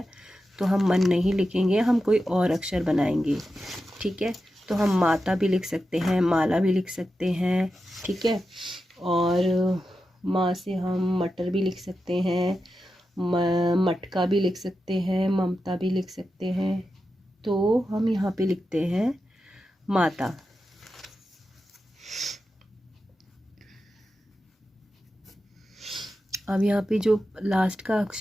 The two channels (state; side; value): normal; both; correlation 0.90